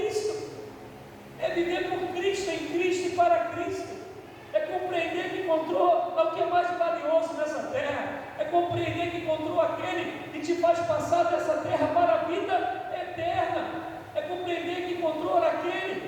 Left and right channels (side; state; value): both; identical; correlation 1.00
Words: É viver por Cristo, em Cristo e para Cristo. É compreender que encontrou o que é mais valioso nessa terra. É compreender que encontrou aquele que te faz passar dessa terra para a vida eterna. É compreender que encontrou